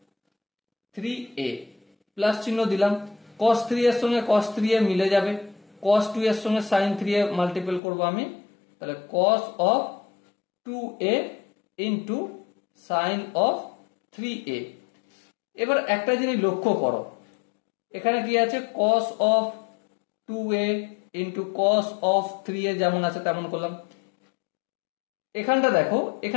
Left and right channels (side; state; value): right; drops out; at 7.8 s